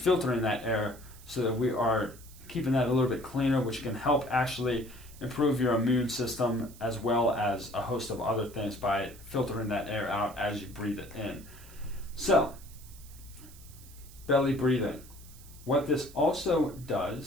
that air so that we are keeping that a little bit cleaner, which can help actually improve your immune system as well as a host of other things by filtering that air out as you breathe it in. So, belly breathing. What this also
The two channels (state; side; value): noise; right; hiss, 21 dB below the sound